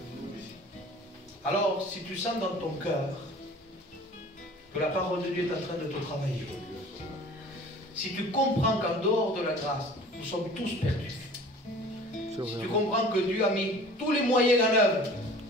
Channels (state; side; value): normal; both; correlation 0.45